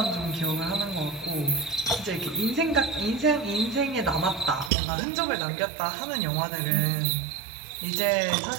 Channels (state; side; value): drops out; left; at 4.7 s